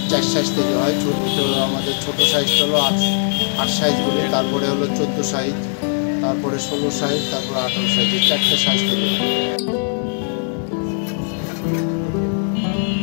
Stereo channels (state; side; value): silent; right; 66 dB below the other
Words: 4 সাইজ তৈরি হয়। আমাদের ছোটো সাইজটা হলো 8 সাইজ বলি, তারপরে হলো 14 সাইজ, তারপরে 16 সাইজ, তারপরে 18 সাইজ, এই 4টে সাইজ তৈরি হয়।